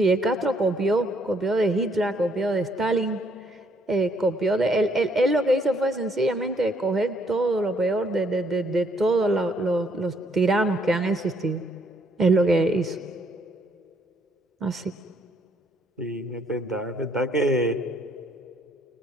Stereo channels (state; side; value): normal; both; correlation 0.69